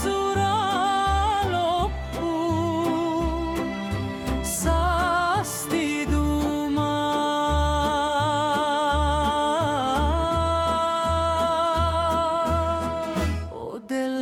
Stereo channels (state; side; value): identical; both; correlation 1.00